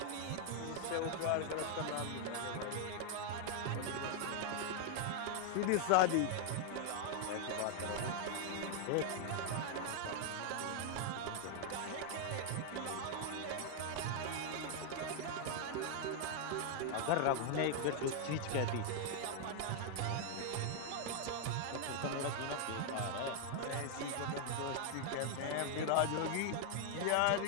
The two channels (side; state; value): both; different; correlation 0.00